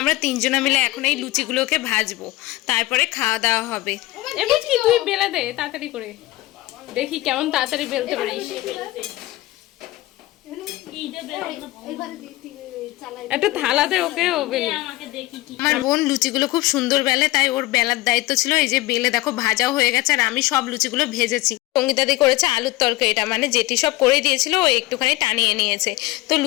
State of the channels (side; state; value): right; quieter; 18.8 dB